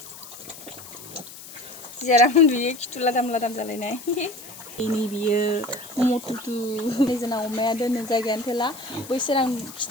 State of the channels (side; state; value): left; noise; hiss, 16 dB below the sound